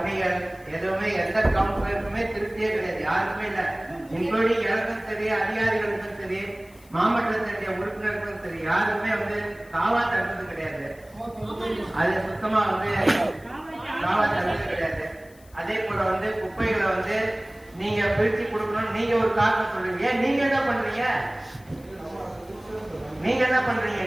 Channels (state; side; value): noise; left; hiss, 27 dB below the sound